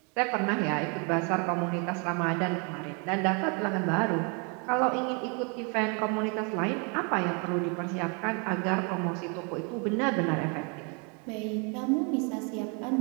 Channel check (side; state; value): left; quieter; 35.0 dB